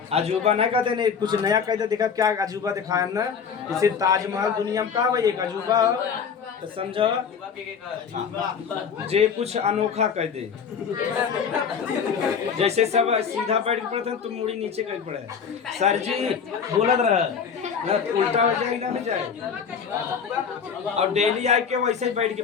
अजूबा ना कहते नहीं, कुछ नया कहते देखा क्या अजूबा दिखाया ना। जैसे ताजमहल दुनिया में का भाई एक अजूबा, तो समझो जे कुछ अनोखा कह दे। जैसे सब सीधा बैठ के पढ़ते हैं, तुम मुड़ी नीचे कर पड़े सर जी बोलत रह, उल्टा हो जाए ना हो जाए। और डेली आके वैसे ही बैठ के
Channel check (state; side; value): quieter; right; 6.6 dB